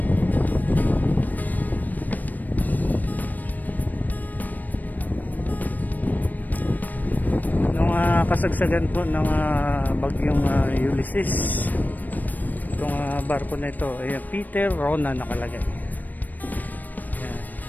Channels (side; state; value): right; late; 0.085 ms